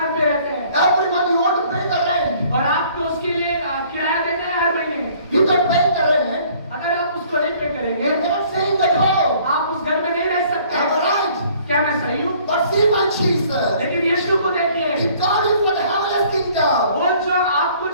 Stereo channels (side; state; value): both; inverted; correlation -0.57